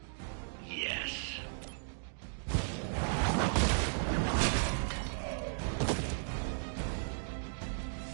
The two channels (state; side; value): silent; left; digital silence